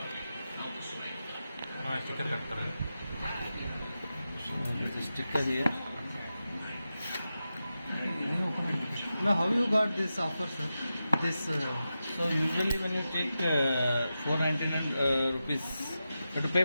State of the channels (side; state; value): both; inverted; correlation -0.91